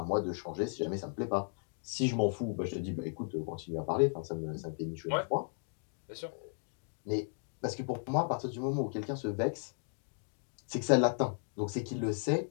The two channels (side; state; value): right; silent; 54 dB below the other